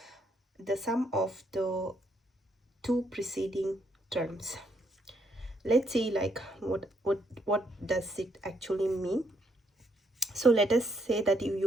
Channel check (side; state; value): both; normal; correlation 0.73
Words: the sum of the two preceding terms. Let's see like what does it actually mean. So let us say that